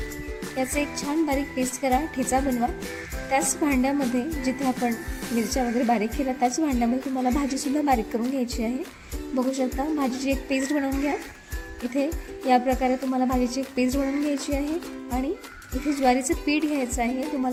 याचे एक छान बारीक पेस्ट करा. ठेचा बनवा. त्याच भांड्यामध्ये जिथे आपण मिरच्या वगैरे बारीक केल्या त्याच भांड्यामध्ये तुम्हाला भाजीसुद्धा बारीक करून घ्यायची आहे. बघू शकता भाजीची एक पेस्ट बनवून घ्या. इथे या प्रकारे तुम्हाला भाजीची एक पेस्ट बनवून घ्यायची आहे. आणि इथे ज्वारीचं पीठ घ्यायचं आहे.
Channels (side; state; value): both; identical; correlation 1.00